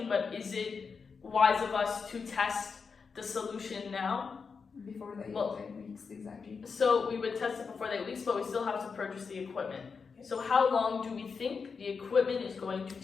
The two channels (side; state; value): right; quieter; 5.4 dB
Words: but is it wise of us to test the solution now? Before the Well- 8 weeks, exactly. So we would test it before the 8 weeks, but we still have to purchase the equipment. So how long do we think the equipment is going to